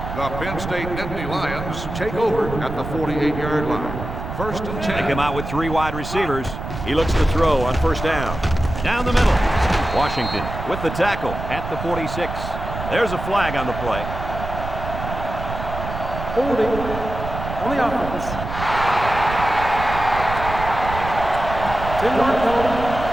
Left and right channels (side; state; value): right; noise; rumble, 7 dB below the sound